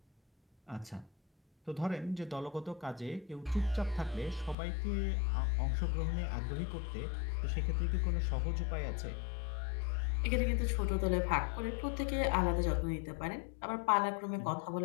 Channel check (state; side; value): drops out; right; at 4.5 s